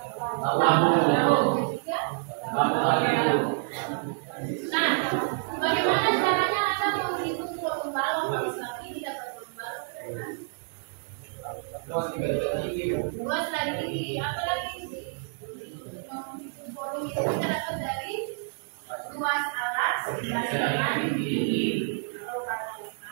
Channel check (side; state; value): left; silent; digital silence